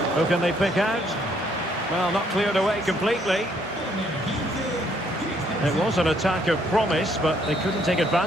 Who can they pick out? Well, not cleared away completely. It was an attack of promise, but they couldn't take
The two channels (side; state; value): both; normal; correlation 0.68